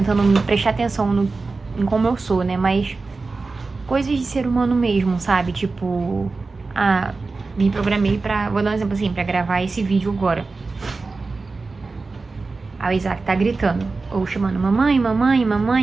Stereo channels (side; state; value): left; quieter; 3.9 dB